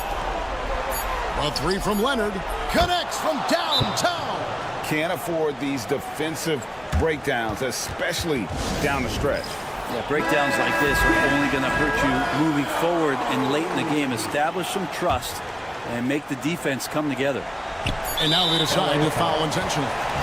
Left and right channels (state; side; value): identical; both; correlation 1.00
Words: A three from Leonard. Connects from downtown. Can't afford these defensive breakdowns, especially down the stretch. Yeah, breakdowns like this are only going to hurt you moving forward and late in the game. Establish some trust and make the defense come together. And now they decide to foul intentionally.